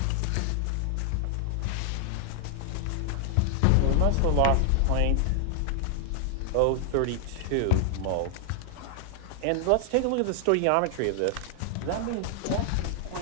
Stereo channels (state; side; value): different; both; correlation 0.00